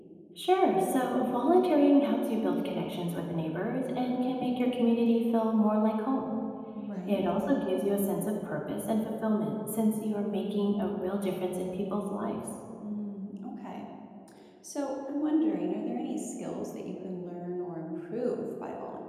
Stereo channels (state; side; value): identical; both; correlation 1.00